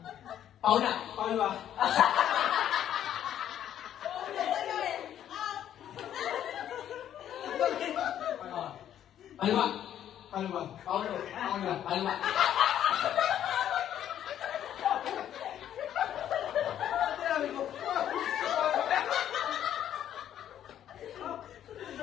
Paula. Palwa. Palwa. Palwa. Paulo. Palwa.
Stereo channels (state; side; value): quieter; right; 10.6 dB